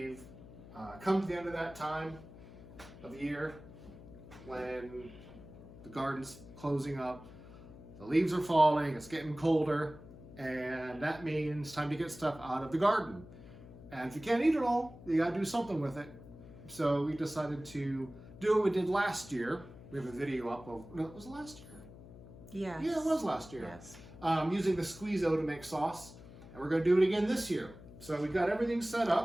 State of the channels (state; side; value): noise; left; hum, 17 dB below the sound